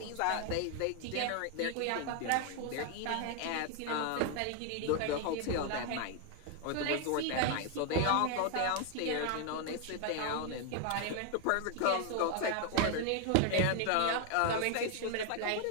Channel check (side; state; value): both; different; correlation 0.01